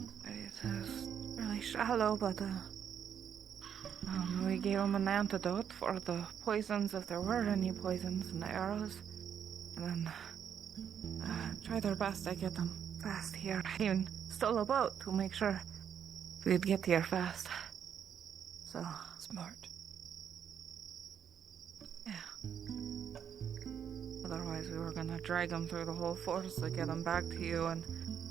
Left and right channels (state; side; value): quieter; left; 8.4 dB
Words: It is really shallow, but we gave him an antidote for the poisons, if there were any poisons, and the arrows. And then tried our best to get them fast here. Even stole a boat to make sure we'd get here fast. So smart. Yeah. Otherwise, we were gonna drag him through the whole forest to get him back to you, and